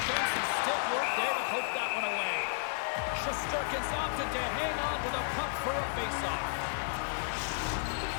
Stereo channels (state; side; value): silent; right; 56 dB below the other